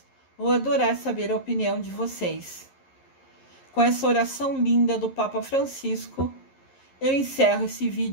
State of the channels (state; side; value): late; right; 11 ms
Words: vou adorar saber a opinião de vocês. Com essa oração linda do Papa Francisco, eu encerro esse